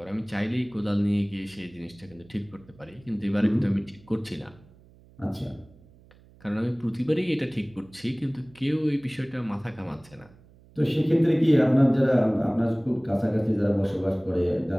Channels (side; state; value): right; noise; hum, 26 dB below the sound